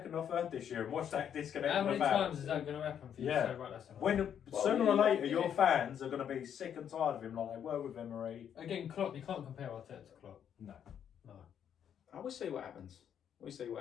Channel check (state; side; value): quieter; right; 8.9 dB